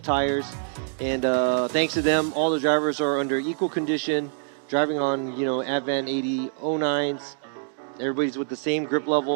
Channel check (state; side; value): silent; left; digital silence